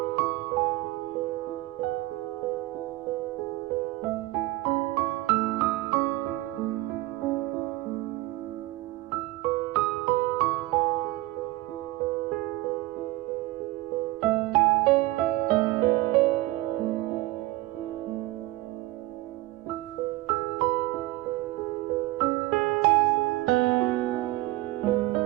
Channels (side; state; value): left; quieter; 19.1 dB